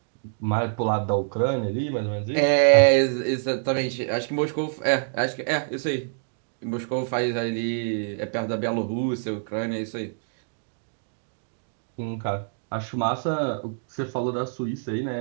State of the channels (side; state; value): left; silent; digital silence